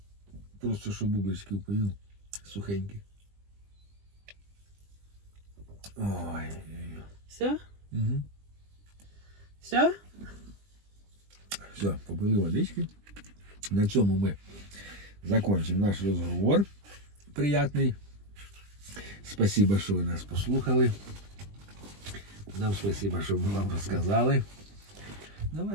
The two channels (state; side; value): late; left; 20 ms